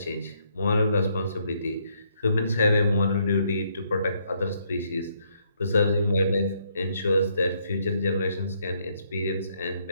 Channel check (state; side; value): inverted; both; correlation -0.72